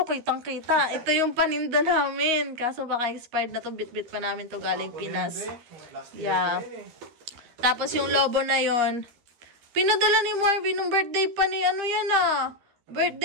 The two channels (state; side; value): late; left; 13 ms